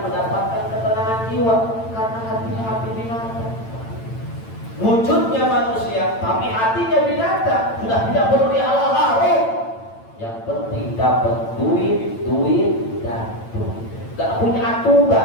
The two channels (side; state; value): right; late; 8.9 ms